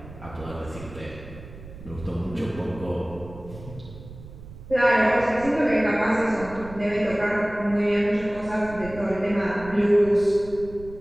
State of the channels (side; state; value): right; noise; rumble, 16 dB below the sound